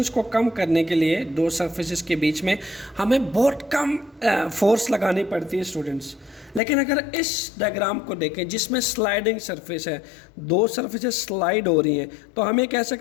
को कम करने के लिए दो surfaces के बीच में हमें बहुत कम फोर्स लगानी पड़ती है स्टूडेंट्स। लेकिन अगर इस डायग्राम को देखें जिसमें स्लाइडिंग सरफेस है, दो सरफेसेस स्लाइड हो रही हैं, तो हम ये कह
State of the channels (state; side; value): drops out; right; at 6.6 s